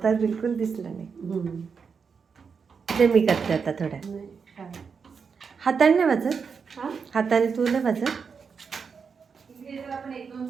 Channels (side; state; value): left; quieter; 5.8 dB